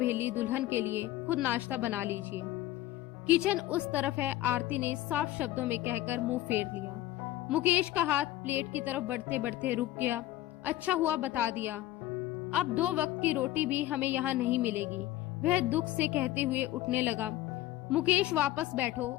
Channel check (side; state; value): right; quieter; 15.1 dB